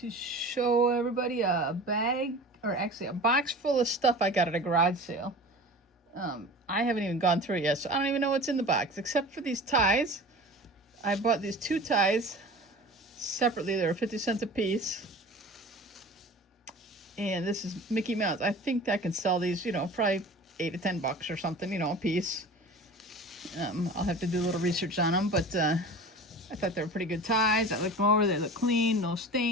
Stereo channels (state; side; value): normal; both; correlation 0.38